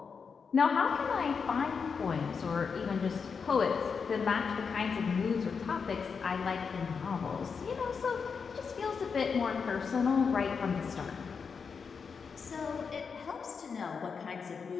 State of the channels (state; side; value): quieter; right; 5.7 dB